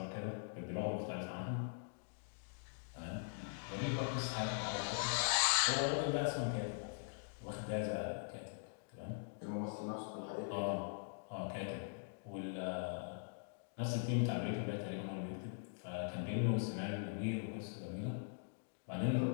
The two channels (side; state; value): right; silent; digital silence